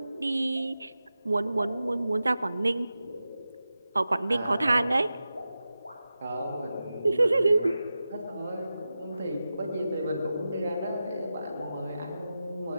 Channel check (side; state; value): both; inverted; correlation -0.92